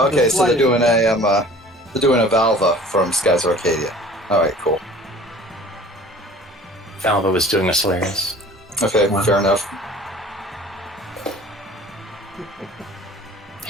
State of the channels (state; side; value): normal; both; correlation 0.47